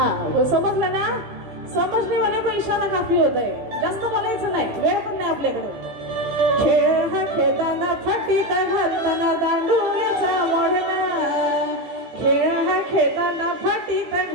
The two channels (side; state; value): left; late; 15 ms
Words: समजलं ना? समजणे वाले को इशारा काफी होत आहे, जास्त बोलायचं नाही, वेळ पण नाही आपल्याकडे। खेळ हा खेळताना फटीत घालताना, दांडू याचा मोडला। खेळ हा खेळताना फटीत